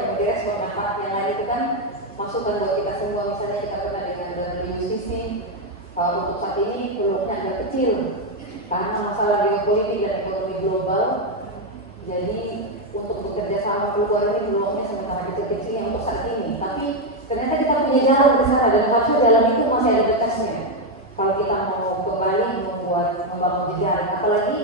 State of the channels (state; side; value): normal; both; correlation 0.03